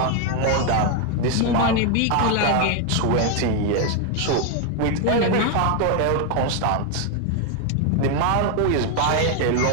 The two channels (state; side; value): different; both; correlation 0.01